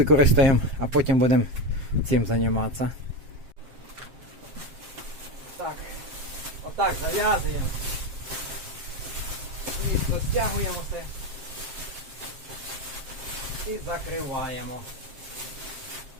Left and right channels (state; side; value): late; left; 7.5 ms